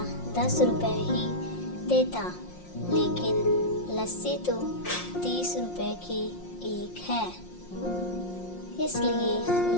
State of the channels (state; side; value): late; right; 5.6 ms